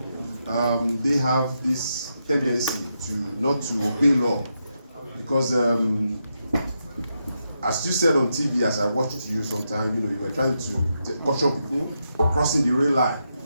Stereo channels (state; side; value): inverted; both; correlation -0.84